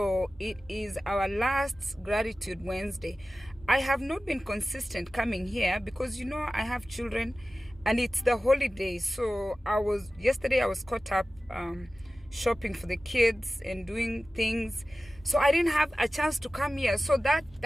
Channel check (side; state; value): both; normal; correlation 0.96